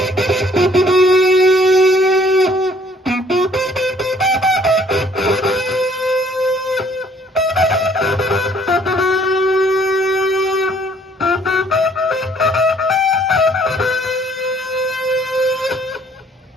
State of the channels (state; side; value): normal; both; correlation 0.60